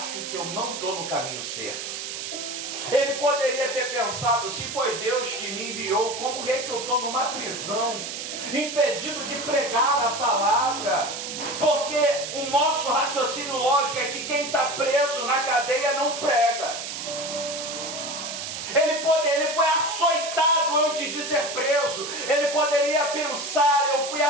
que eu não estou no caminho certo. Ele poderia ter pensado: se foi Deus que me enviou, como é que eu estou numa prisão, impedido de pregar a palavra? Porque o nosso raciocínio lógico é que quem está preso na cadeia não prega. Ele foi açoitado antes de ser preso. Ele poderia pensar: eu fui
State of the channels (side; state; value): right; noise; hiss, 6 dB below the sound